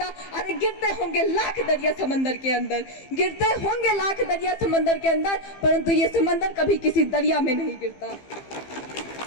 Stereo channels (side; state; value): right; late; 15 ms